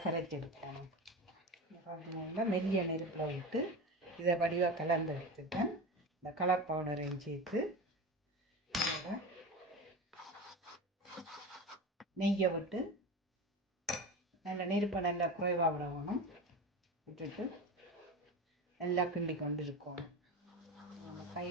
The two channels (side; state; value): both; normal; correlation 0.26